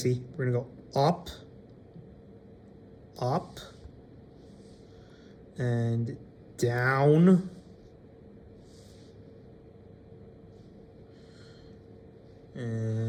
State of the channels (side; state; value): both; identical; correlation 1.00